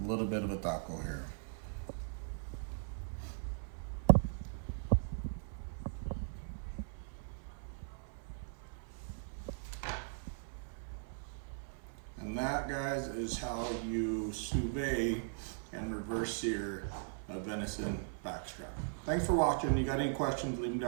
a little bit of a taco here. And that, guys, is how you sous vide and reverse sear a venison backstrap. Thanks for watching. You got any questions, leave them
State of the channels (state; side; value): silent; left; 52 dB below the other